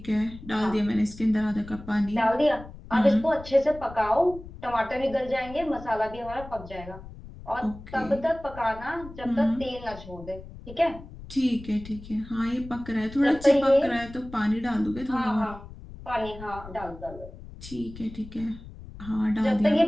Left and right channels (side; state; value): left; noise; rumble, 15 dB below the sound